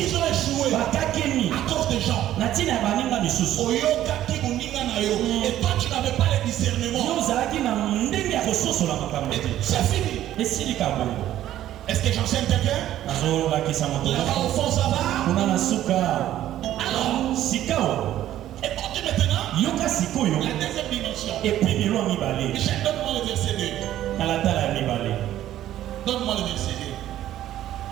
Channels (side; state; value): left; quieter; 12.7 dB